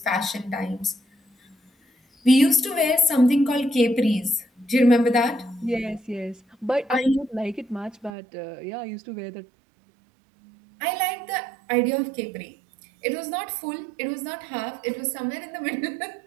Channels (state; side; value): drops out; left; at 8.1 s